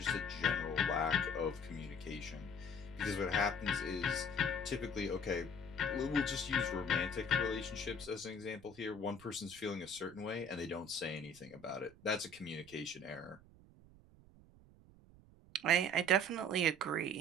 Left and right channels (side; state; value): right; noise; rumble, 23 dB below the sound